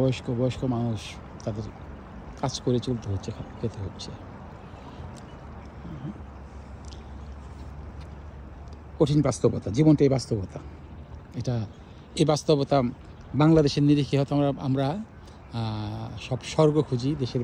মানুষ, তাদের কাজ করে চলতে হচ্ছে, খেতে হচ্ছে। কঠিন বাস্তবতা, জীবনটা এই বাস্তবতা। এই বাস্তবতা বাংলাদেশের নিরিখে হয়তো আমরা সব স্বর্গ খুঁজি দেশের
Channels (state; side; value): identical; both; correlation 1.00